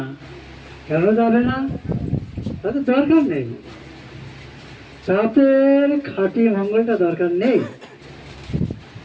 কেন যাবে না? তাদের দরকার নেই, তাদের খাঁটি মঙ্গলটা দরকার নেই।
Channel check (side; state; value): both; identical; correlation 1.00